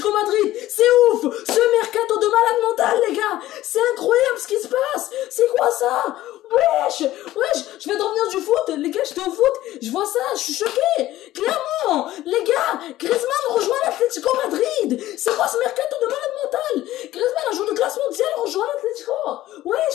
Madrid. C'est ouf, ce mercato de malade mental, les gars. C'est incroyable ce qui se passe. C'est quoi ça? Wesh, je viens de revenir du foot. Les gars, j'étais au foot. Je vois ça, je suis choqué. Clairement, les gars, Griezmann rejoint l'Atlético Madrid. C'est quoi ce mercato de malade mental? Griezmann, un joueur de classe mondiale, rejoint l'Atlético.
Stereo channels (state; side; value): quieter; right; 15.0 dB